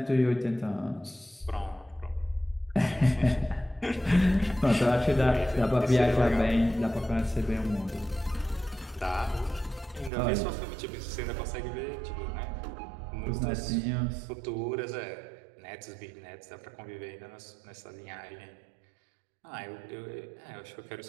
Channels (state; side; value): drops out; left; at 10.1 s